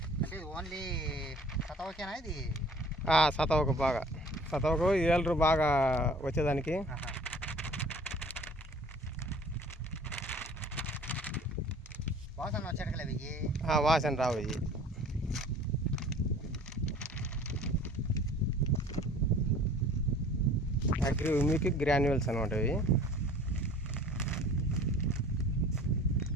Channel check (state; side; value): normal; both; correlation 0.48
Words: అంటే ఓన్లీ సతవకేనా ఇది? సతవకు బాగా, సతవకు ఏలరు బాగా వచ్చేదానికి. వాసన వచ్చేటకలే వాసన రావు. ఇవి అగ్రి గ్రాన్యువల్స్ అనమాట. ఇవి